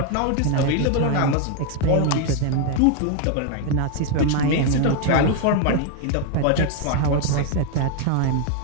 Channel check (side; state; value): both; different; correlation 0.01